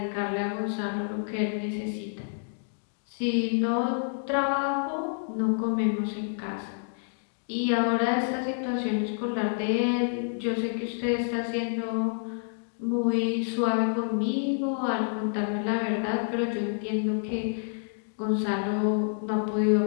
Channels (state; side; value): silent; right; digital silence